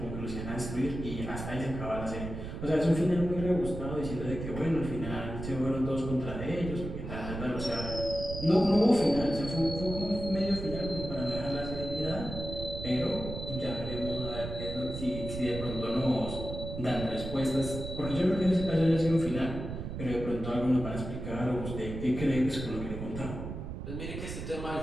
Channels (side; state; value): right; noise; rumble, 7 dB below the sound